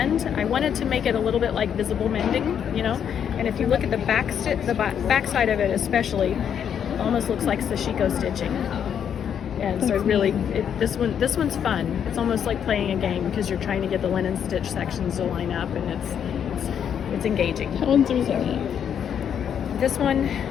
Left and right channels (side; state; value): right; quieter; 8.5 dB